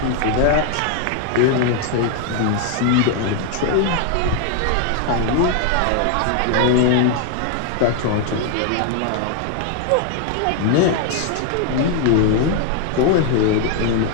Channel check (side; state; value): both; different; correlation 0.00